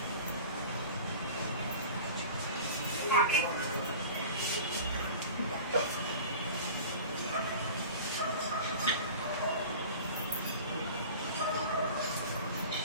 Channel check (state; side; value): inverted; both; correlation -0.38